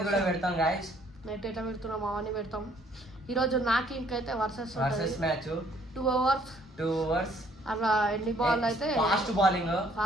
కూడా పెడతాం గాయస్. నెట్ ఎట్లా పెడుతున్నాం అవన్నీ పెడతాం. ఈరోజు నాకు ఇంకైతే వర్సెస్ మ్యాచ్ 2 అవర్స్ అట్లా ఎన్ని బాల్ అయితే ఫాస్ట్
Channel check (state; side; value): normal; both; correlation 0.63